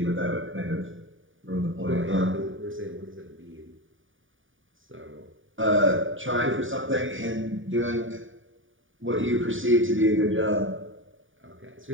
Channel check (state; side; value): late; left; 0.57 ms